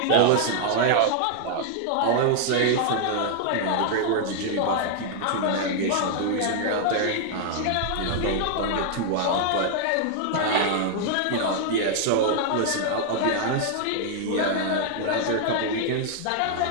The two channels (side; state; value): both; different; correlation -0.01